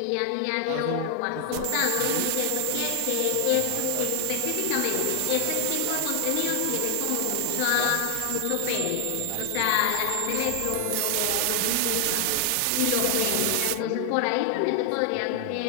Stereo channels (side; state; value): both; different; correlation 0.00